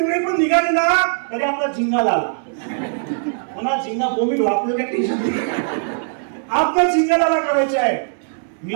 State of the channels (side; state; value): left; silent; digital silence